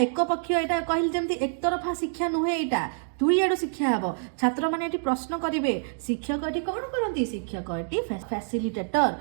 पक्ष यहाँ कहली जमी एक तरफा शिक्षा नुहे यहाँ दुई आड़ शिक्षा हे छात्र मैंने प्रश्न करेंगे शिक्षक ये कौन करती शिक्षक ये फैसिलिटेटर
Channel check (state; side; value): silent; left; digital silence